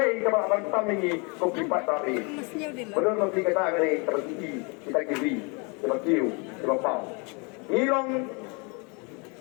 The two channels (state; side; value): quieter; right; 32.2 dB